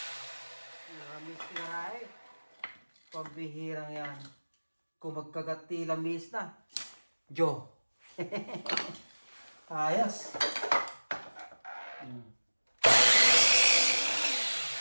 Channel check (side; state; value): both; inverted; correlation -1.00